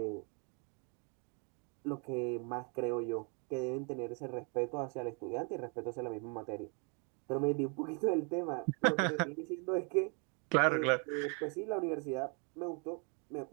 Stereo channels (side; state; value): left; quieter; 36.4 dB